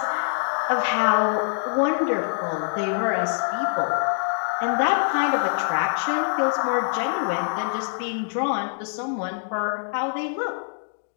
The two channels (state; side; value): silent; right; digital silence